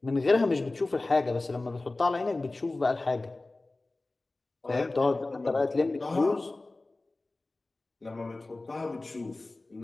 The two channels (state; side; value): quieter; right; 3.1 dB